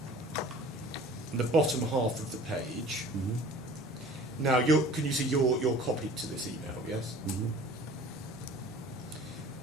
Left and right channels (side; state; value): both; normal; correlation 0.45